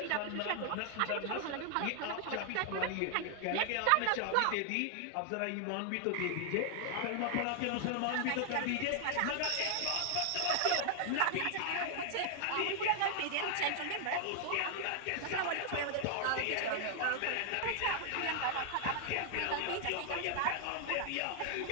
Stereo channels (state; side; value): different; both; correlation 0.00